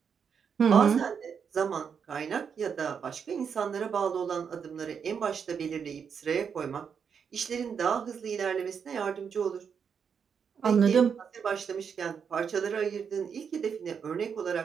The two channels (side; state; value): left; quieter; 6.8 dB